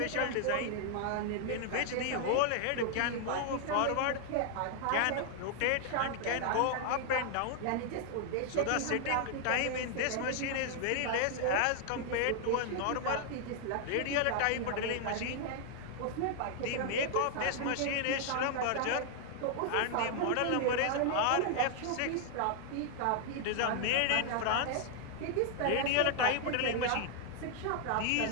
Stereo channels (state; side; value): different; both; correlation 0.00